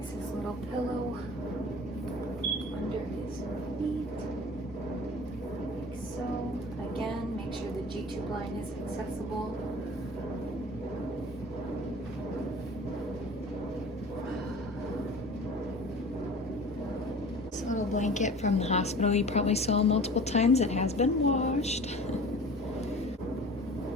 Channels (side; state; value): both; normal; correlation 0.42